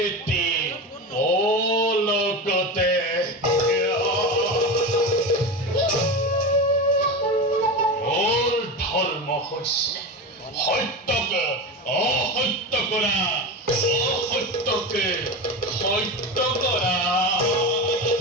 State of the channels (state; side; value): normal; both; correlation 0.23